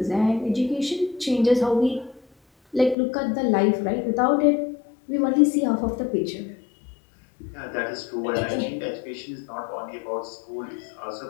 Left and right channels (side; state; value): right; drops out; at 3.0 s